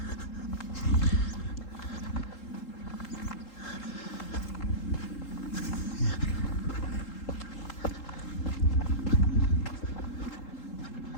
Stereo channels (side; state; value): right; late; 3.8 ms